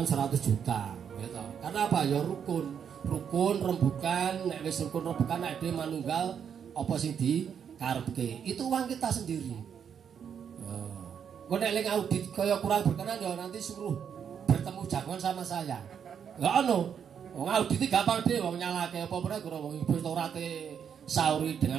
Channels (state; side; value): quieter; left; 7.8 dB